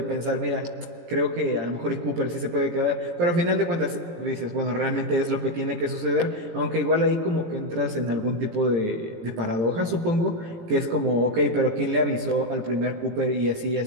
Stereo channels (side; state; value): left; late; 18 ms